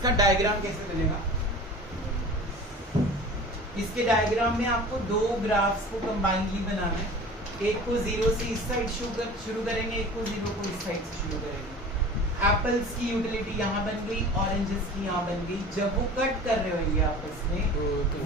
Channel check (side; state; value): both; normal; correlation 0.39